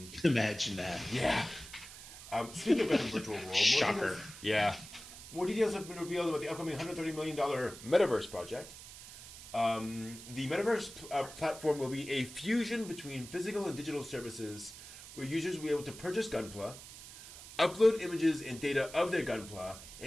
Imagine that. Yeah. Speaking of Gundam Virtual World, Shocker. More details have been revealed about the upcoming $130 million Metaverse project. The Metaverse platform will be a fusion between physical and digital services where users will be able to purchase Gunpla, upload images and data of their Gunpla,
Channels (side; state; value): right; noise; hiss, 15 dB below the sound